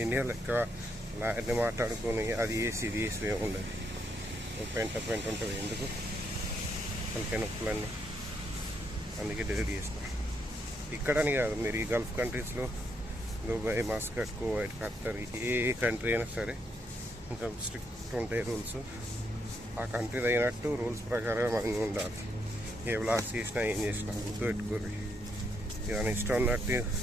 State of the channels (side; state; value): both; normal; correlation 0.77